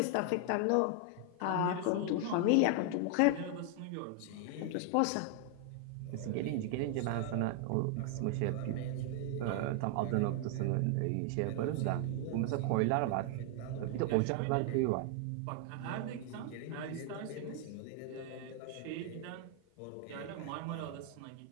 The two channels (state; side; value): different; both; correlation 0.00